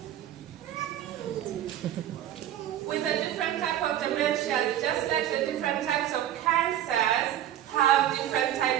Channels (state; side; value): quieter; left; 11.7 dB